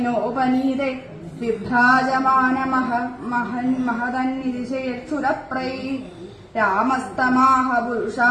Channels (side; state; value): both; identical; correlation 1.00